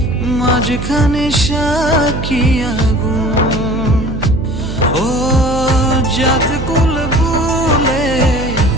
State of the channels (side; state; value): right; noise; hum, 6 dB below the sound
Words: মাঝখানে সাক্ষী আগুন। ও জাত কুল ভুলে